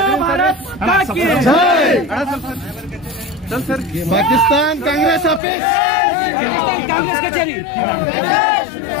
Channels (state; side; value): drops out; right; at 5.4 s